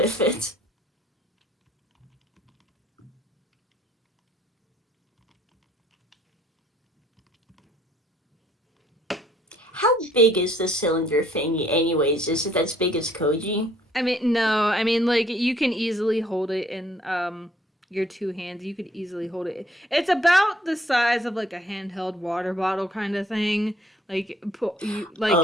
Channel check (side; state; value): both; normal; correlation 0.63